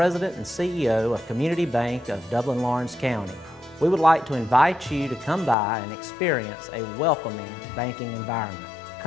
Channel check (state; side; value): drops out; right; at 5.6 s